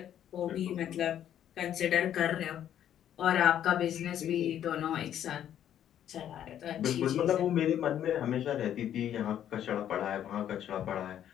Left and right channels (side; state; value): right; quieter; 10.5 dB